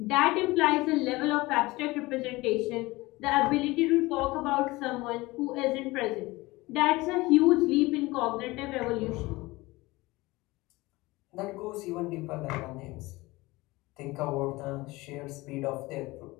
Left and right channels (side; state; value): right; quieter; 21.1 dB